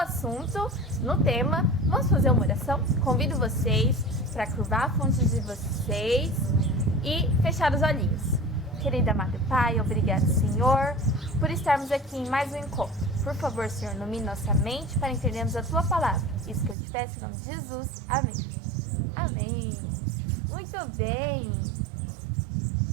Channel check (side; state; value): left; drops out; at 16.8 s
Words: no tema, vamos fazer uma oração? Convido vocês para curvar a fonte de vocês e fechar os olhinhos. Querido amado Pai, obrigado, Senhor, por estarmos aqui em mais um encontro. Por favor, Senhor, ilumine nossa mente para entendermos a Tua palavra. Isso que eu te peço em nome de Jesus. Amém. Amém. Muito bem.